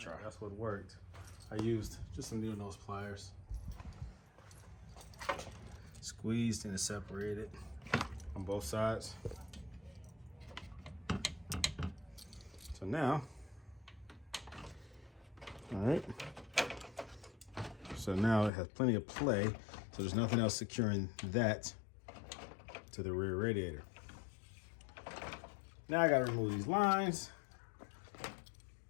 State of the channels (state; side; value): drops out; right; at 18.5 s